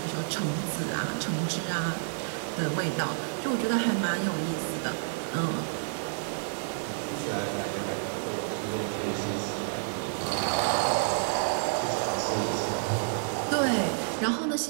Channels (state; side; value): silent; left; digital silence